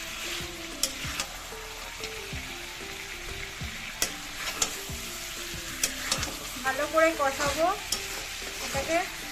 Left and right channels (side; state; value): both; identical; correlation 1.00